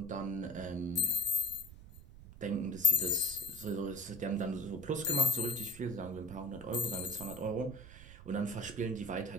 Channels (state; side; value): noise; right; rumble, 16 dB below the sound